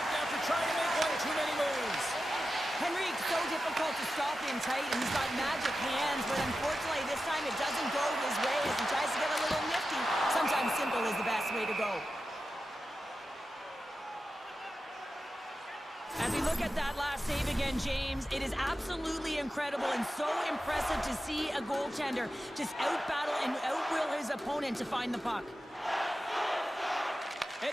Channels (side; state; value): both; normal; correlation 0.92